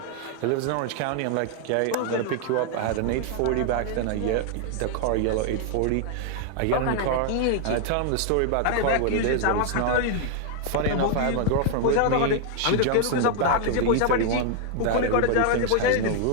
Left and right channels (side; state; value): both; different; correlation 0.00